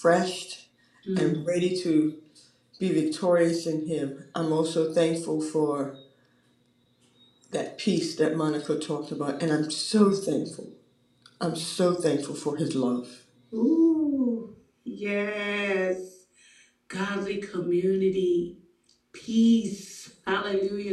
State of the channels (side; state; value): both; identical; correlation 1.00